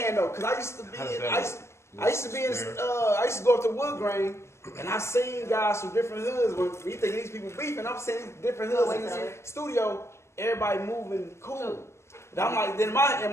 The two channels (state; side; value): late; right; 0.13 ms